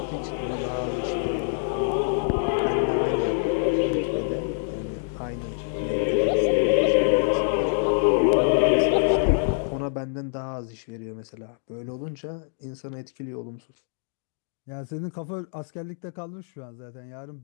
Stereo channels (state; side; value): silent; right; digital silence